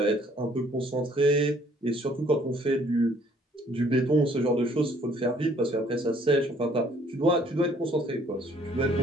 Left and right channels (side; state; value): both; normal; correlation 0.61